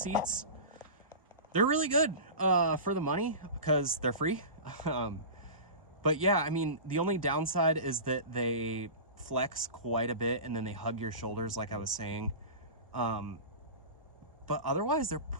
They're really good for the money because they're free. But yeah, I mean, the only downside is that they flex quite a bit and then they hug your shoulders, like I was saying. But otherwise, they're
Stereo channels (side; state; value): both; inverted; correlation -0.30